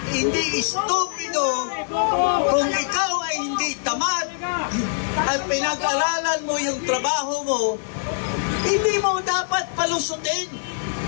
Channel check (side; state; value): right; silent; digital silence